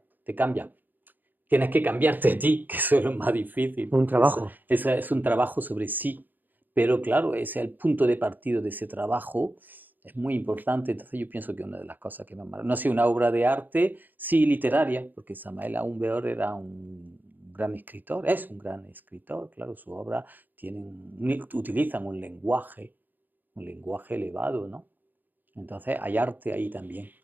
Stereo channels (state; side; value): late; left; 0.087 ms